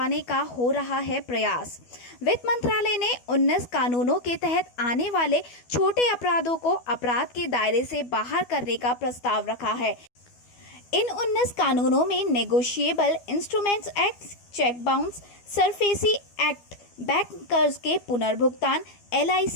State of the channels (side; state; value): right; late; 12 ms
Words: का हो रहा है प्रयास। वित्त मंत्रालय ने 19 कानूनों के तहत आने वाले छोटे अपराधों को अपराध के दायरे से बाहर करने का प्रस्ताव रखा है। इन 19 कानूनों में negotiable instruments act, cheque bounce, SARFAESI act, bank कर्ज के पुनर्भुगतान,